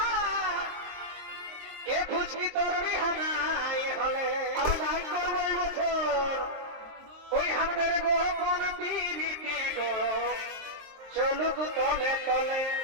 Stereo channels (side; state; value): left; late; 23 ms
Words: এ ফুচকি তোর বিহানাই হলে আর নাই করবো এই বছর ওই আমাদের গোপন পিরিতি গো চলুক তলে তলে